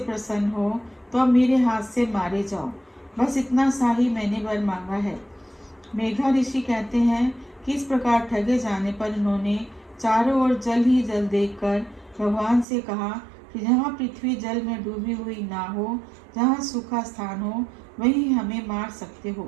हो तो अब मेरे हाथ से मारे जाओ। बस इतना सा ही मैंने वर मांगा है। मेघा ऋषि कहते हैं कि इस प्रकार ठगे जाने पर उन्होंने चारों ओर जल ही जल देखकर भगवान से कहा कि जहाँ पृथ्वी जल में डूबी हुई ना हो, जहाँ सूखा स्थान हो, वहीं हमें मार सकते हो।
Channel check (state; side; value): drops out; left; at 12.7 s